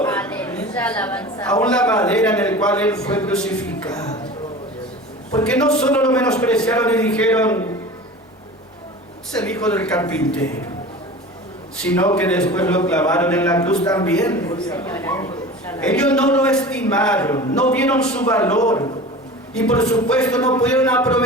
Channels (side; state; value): both; normal; correlation 0.36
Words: Aleluya, alabanza. Aún la madera en la cual Él fue crucificado. Porque no solo lo menospreciaron y dijeron, es el hijo del carpintero, sino que después lo clavaron en la cruz también. Ellos no lo estimaron, no vieron su valor, y por supuesto no pudieron